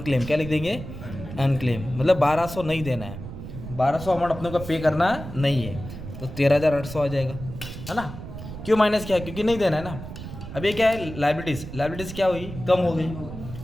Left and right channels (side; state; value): right; noise; rumble, 10 dB below the sound